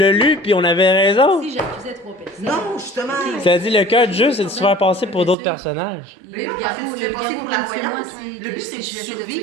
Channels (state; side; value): drops out; left; at 5.4 s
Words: lu, puis on avait raison. si j'accusais 3 personnes. Non, justement. Ça a dit le cœur du jeu, c'est de se faire passer pour d'autres personnages. Mais non, parce que tu te fais passer pour la voyante. Le but, c'est de